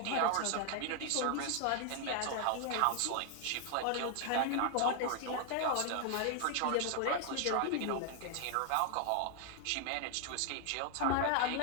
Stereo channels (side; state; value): both; different; correlation 0.00